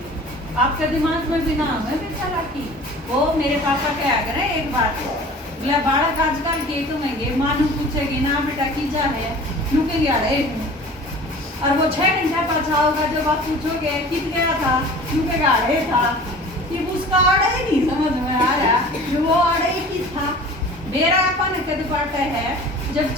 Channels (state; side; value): normal; both; correlation 0.43